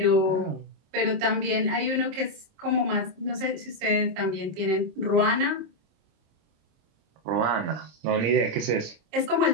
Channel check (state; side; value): late; left; 26 ms